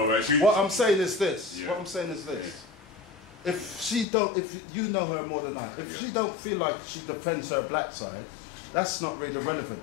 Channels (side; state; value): right; drops out; at 4.0 s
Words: What I'm saying is this. Yeah. What I'm saying is this. If you know her more than I, if she don't feel like she defends her black side, that's not really